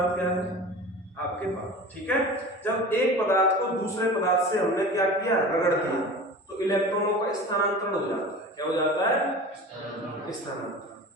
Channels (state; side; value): normal; both; correlation 0.35